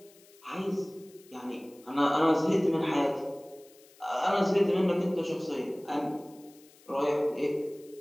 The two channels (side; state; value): left; noise; hiss, 26 dB below the sound